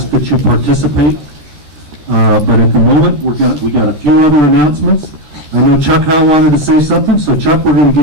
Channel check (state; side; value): late; left; 13 ms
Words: that you participate. But at the moment, we got a few other announcements. I know Chuck Howe wanted to say something, so Chuck, we're going to